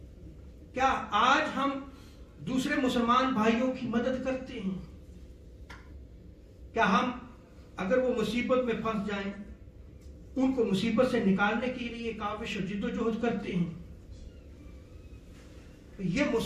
کیا آج ہم دوسرے مسلمان بھائیوں کی مدد کرتے ہیں؟ کیا ہم اگر وہ مصیبت میں پھنس جائیں ان کو مصیبت سے نکالنے کے لیے کاوش اور جد و جہد کرتے ہیں؟ یہ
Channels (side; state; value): both; identical; correlation 1.00